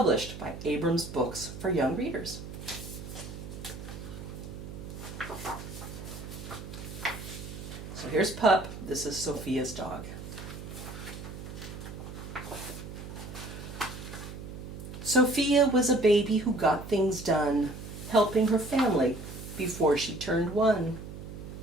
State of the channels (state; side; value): noise; right; hum, 10 dB below the sound